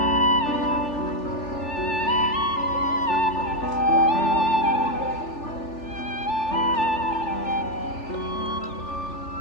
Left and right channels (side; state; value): right; late; 3.4 ms